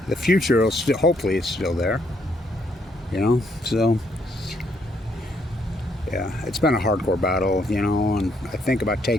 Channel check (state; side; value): normal; both; correlation 0.72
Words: the future will still, hopefully, it's still there. You know, so yeah, it's been a hardcore battle. You know, and I think about